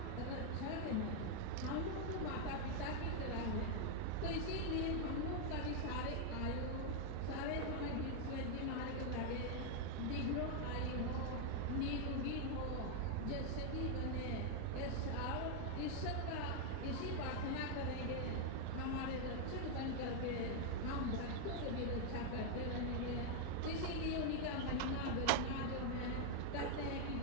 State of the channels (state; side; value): different; both; correlation 0.01